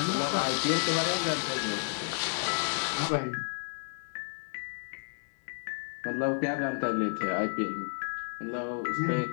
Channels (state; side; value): silent; right; digital silence